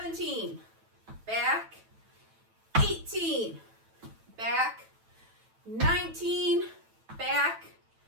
back, 18, back, 19, back,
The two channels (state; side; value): late; left; 9.0 ms